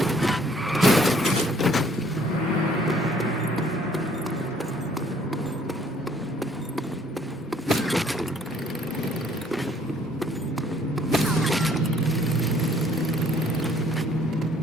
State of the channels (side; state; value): both; normal; correlation 0.61